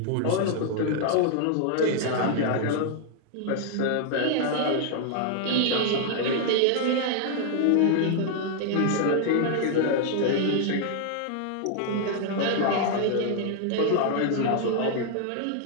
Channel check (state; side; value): different; both; correlation 0.00